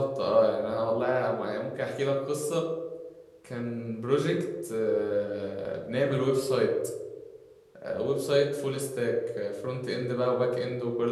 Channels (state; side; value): identical; both; correlation 1.00